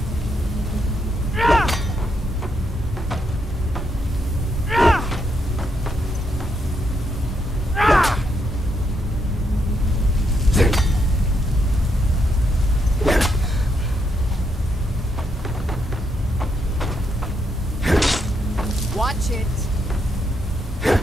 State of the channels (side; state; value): both; normal; correlation 0.78